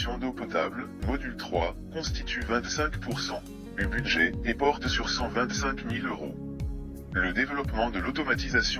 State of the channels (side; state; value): both; identical; correlation 1.00